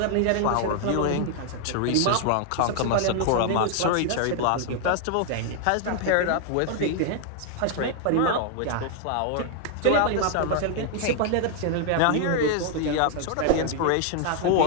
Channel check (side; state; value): both; different; correlation 0.00